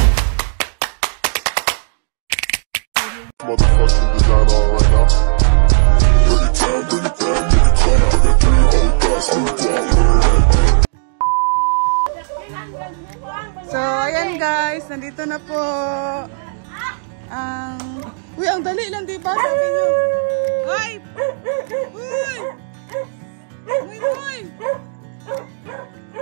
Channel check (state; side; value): silent; left; digital silence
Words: motherfucking design on right now. Bring it down, make it clap. I got 3 old thoughts, new guap. So, ayan guys, nandito na po ang... Uy, ang dali lang, diba? Sabi nyo. Ay! Uy! Muy, muy!